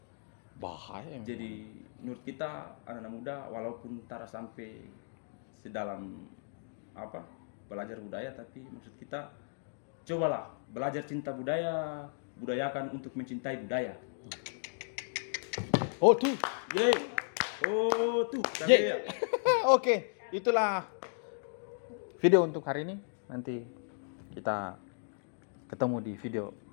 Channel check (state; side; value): silent; right; digital silence